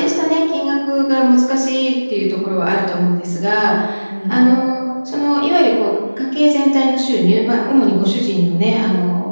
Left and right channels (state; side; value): inverted; both; correlation -1.00